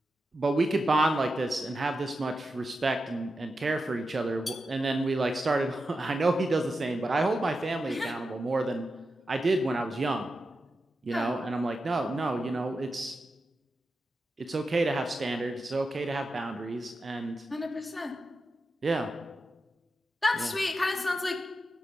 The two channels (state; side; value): normal; both; correlation 0.89